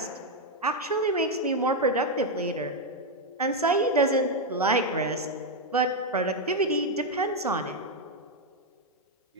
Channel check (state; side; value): normal; both; correlation 0.02